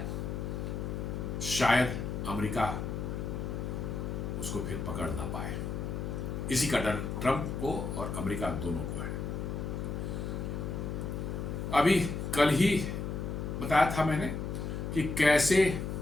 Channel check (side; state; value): left; noise; hum, 3 dB below the sound